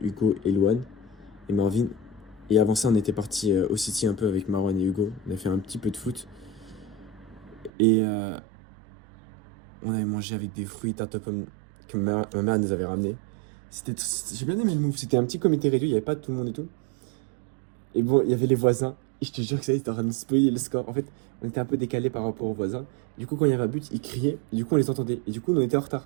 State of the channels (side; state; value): left; drops out; at 7.7 s